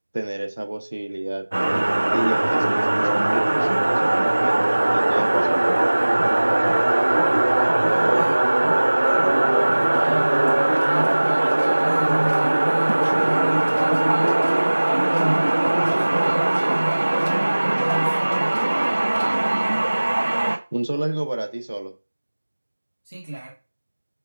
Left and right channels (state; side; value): inverted; both; correlation -1.00